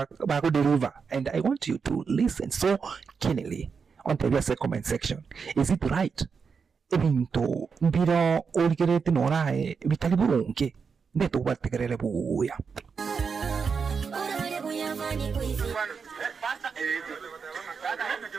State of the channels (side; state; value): left; quieter; 5.7 dB